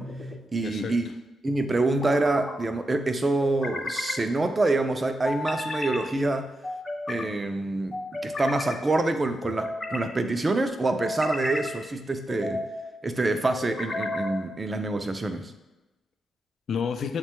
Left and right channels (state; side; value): normal; both; correlation 0.87